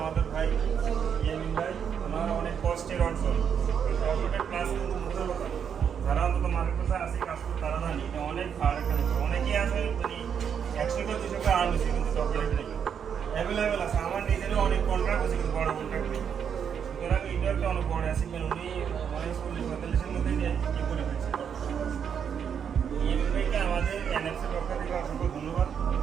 ভাই ইয়ামিন ভাই, ওনার অনেক কষ্টের অর্জন সবটা ক্লাস কিন্তু মুখের কথা যারা অন্তত মার্কেট কথা আছে কাজ করে তারা জানি এটা অনেক ভালো একটা বিষয়। অনেকেই আছে মানে 100 করে 200 করে আর্ন হচ্ছে কিন্তু সফটওয়্যার নেই অ্যাভেলেবেল আছে। আমার নিজেরও অনেক কন্ট্রাক্ট আছে কিন্তু বড় কন্ট্রাক্ট নেই, সুতরাং এটা একটা অনেক বড় অ্যাচিভমেন্ট। উনি অনেক 40-45-এর মধ্যে ইয়ে করে ফেলছে। ভাইকে আমাদের এনএফসির পক্ষ থেকে অসংখ্য ধন্যবাদ।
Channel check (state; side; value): quieter; left; 7.7 dB